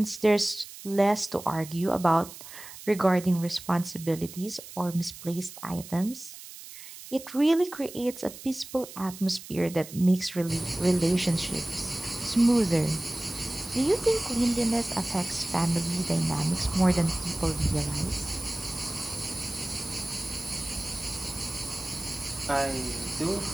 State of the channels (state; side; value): noise; right; hiss, 15 dB below the sound